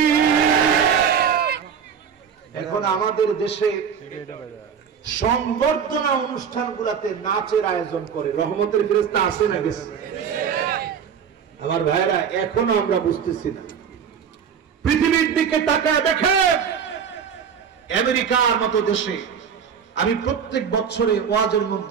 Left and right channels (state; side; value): quieter; left; 7.4 dB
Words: এখন আমাদের দেশে সংবর্ধনা অনুষ্ঠানগুলোতে নাচের আয়োজন করে, রহমতের ফেরেশতা আসে না গেছে? আমার ভাইরা এখনো আমরা বুঝতেছি না। পৃথিবীর দিকে তাকায় দেখেন, আমেরিকার মতো দেশে আমি প্রত্যেক বছরে ওয়াজের